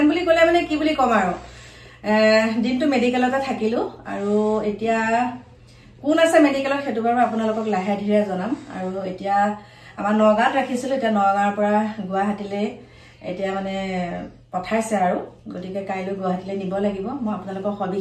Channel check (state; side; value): identical; both; correlation 1.00